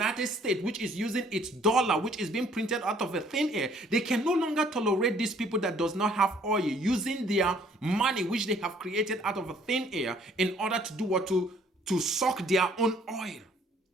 States, which is using its dollar, which is being printed out of a thin air, they can no longer tolerate these people that does not have oil using their money, which they have created out of a thin air, in order to do what? To suck their own oil.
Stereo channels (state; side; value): normal; both; correlation 0.60